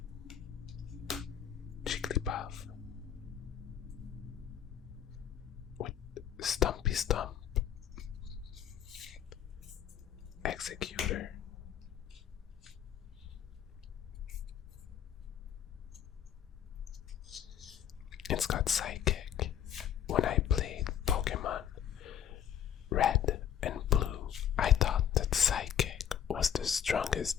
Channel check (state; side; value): quieter; right; 9.4 dB